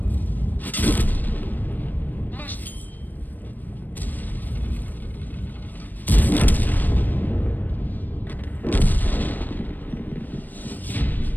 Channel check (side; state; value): right; late; 0.088 ms